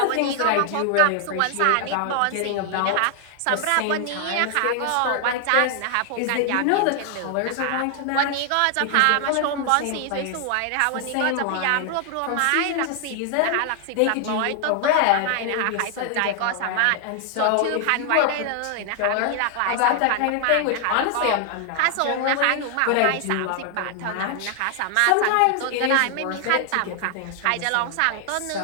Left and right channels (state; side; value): different; both; correlation 0.00